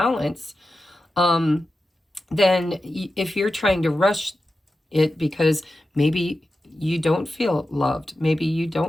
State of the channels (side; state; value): both; normal; correlation 0.92